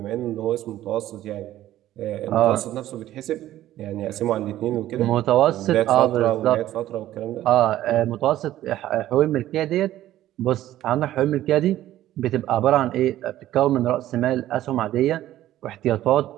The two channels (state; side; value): quieter; left; 13.7 dB